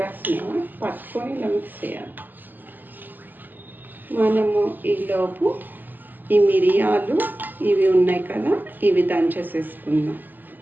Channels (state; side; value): late; left; 0.088 ms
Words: పట్టుకొని ఇలా మిక్స్ చేయాలి. మనము ఈలోపు ఈ మిరియాలు ఇవి ఉన్నాయి కదా, ఇవి దంచేసేసుకుందాం.